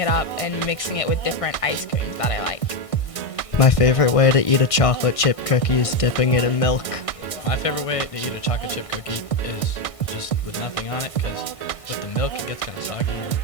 up and mixing it with different ice creams that I like. My favorite way to eat a chocolate chip cookie is dipping it in milk. My favorite way to eat a chocolate chip cookie is just with nothing on it, because with the milk it gets kind of soggy, and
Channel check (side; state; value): right; late; 1.6 ms